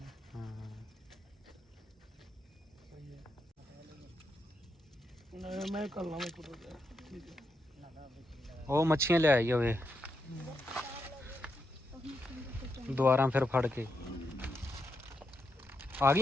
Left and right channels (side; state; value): both; normal; correlation 0.82